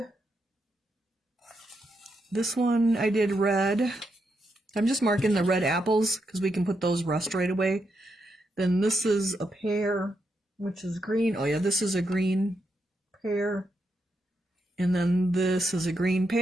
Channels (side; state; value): both; normal; correlation 0.82